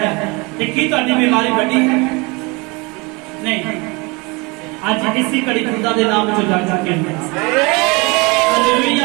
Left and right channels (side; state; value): left; quieter; 27.3 dB